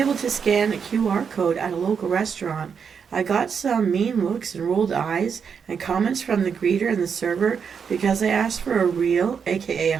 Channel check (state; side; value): quieter; left; 6.6 dB